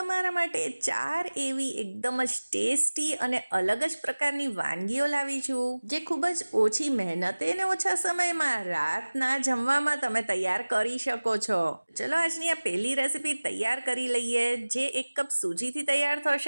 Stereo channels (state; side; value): inverted; both; correlation -1.00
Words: માટે 4 એવી એકદમ જ ટેસ્ટી અને અલગ જ પ્રકારની વાનગીઓ લાવી છું, જે ખૂબ જ ઓછી મહેનતે અને ઓછા સમયમાં રાતના જમવામાં તમે તૈયાર કરી શકો છો. ચલો આજની આ પહેલી રેસીપી તૈયાર કરી લઈએ, જે 1 કપ સૂજીથી તૈયાર